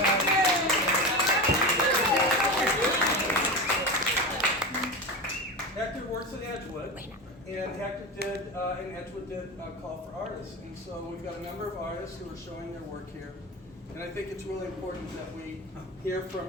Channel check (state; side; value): normal; both; correlation 0.23